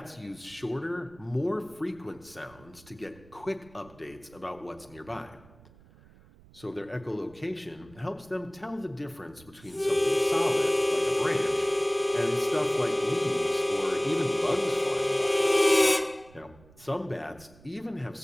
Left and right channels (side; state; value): right; noise; rumble, 24 dB below the sound